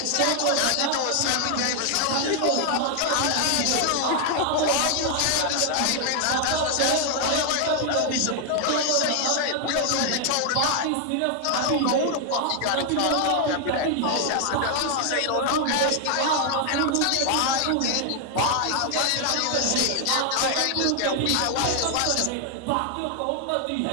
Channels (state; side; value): different; both; correlation 0.00